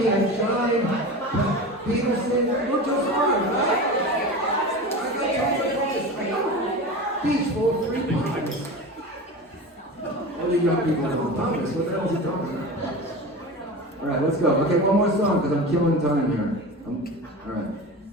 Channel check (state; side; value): normal; both; correlation 0.29